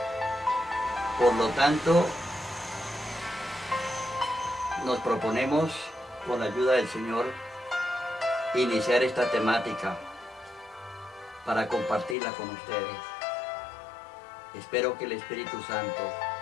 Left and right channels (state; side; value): drops out; right; at 12.2 s